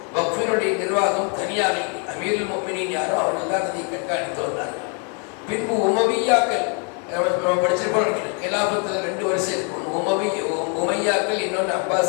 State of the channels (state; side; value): quieter; right; 38.1 dB